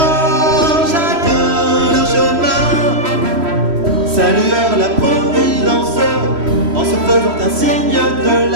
chacun leur chemin, saluèrent la Providence en se faisant un signe de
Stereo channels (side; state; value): left; late; 3.1 ms